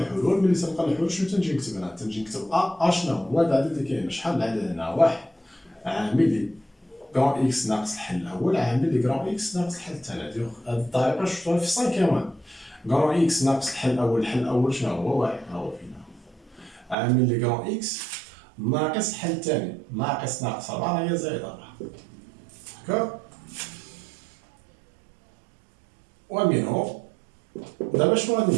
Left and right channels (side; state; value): left; drops out; at 16.9 s